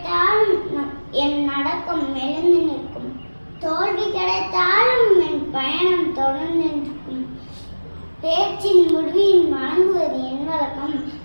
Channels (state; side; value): inverted; both; correlation -1.00